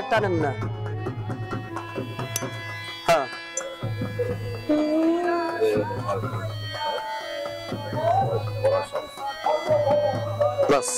আনেন না। হ্যাঁ বাস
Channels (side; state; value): both; identical; correlation 1.00